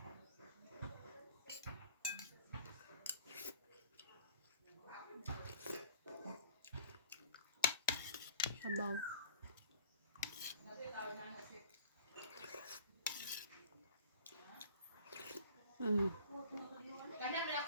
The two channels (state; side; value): inverted; both; correlation -0.50